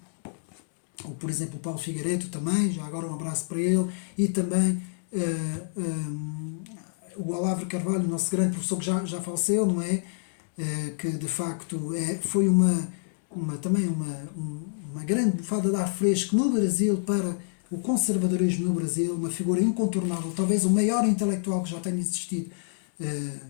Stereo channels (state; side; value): silent; right; digital silence